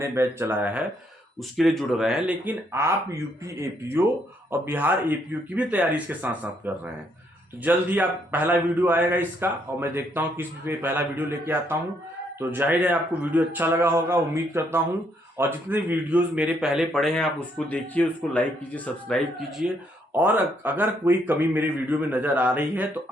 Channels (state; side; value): normal; both; correlation 0.72